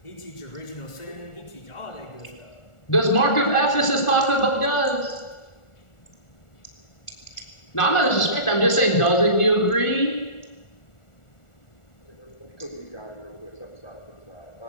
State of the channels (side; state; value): right; late; 1.4 ms